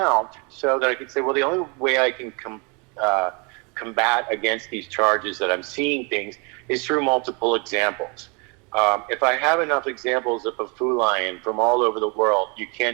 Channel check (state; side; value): quieter; left; 31.8 dB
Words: so that I could say, well, the only way I can combat against these charges that I'm seeing things is through multiple examples. If I have enough examples of a Fu lion from all over the world, you